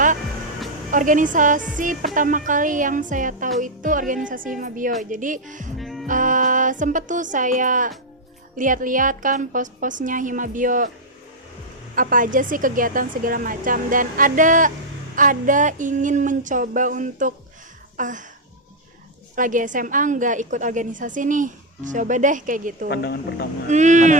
organisasi pertama kali yang saya tahu itu organisasi Himabio. Jadi sempet tuh saya lihat-lihat kan post-postnya Himabio, apa aja sih kegiatan segala macam, dan ada ingin mencoba untuk lagi SMA nggak ikut organisasi nih, coba deh kayak gitu. Pandangan pertama.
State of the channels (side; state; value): both; normal; correlation -0.02